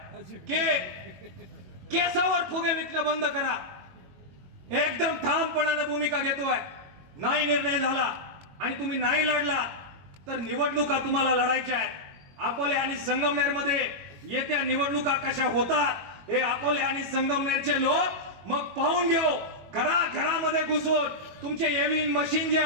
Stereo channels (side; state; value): left; late; 21 ms